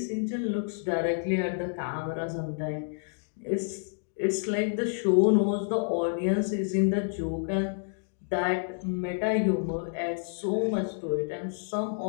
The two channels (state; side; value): silent; right; digital silence